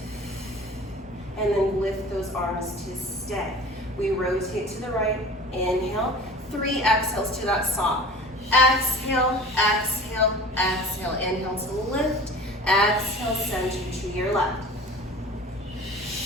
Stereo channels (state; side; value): normal; both; correlation 0.41